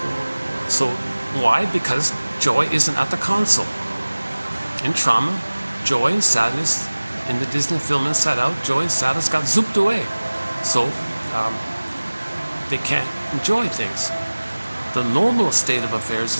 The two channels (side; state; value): both; inverted; correlation -1.00